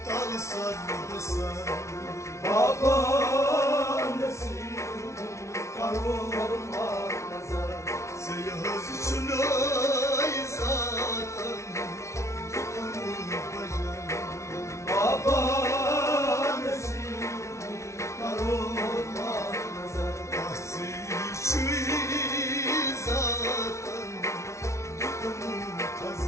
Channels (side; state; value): right; late; 0.14 ms